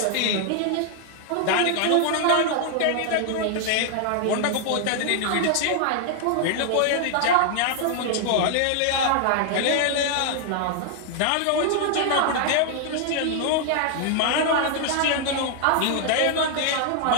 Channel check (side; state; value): both; different; correlation 0.00